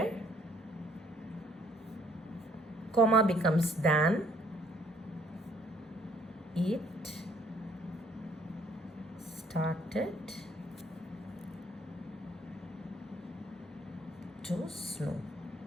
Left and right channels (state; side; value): normal; both; correlation 0.64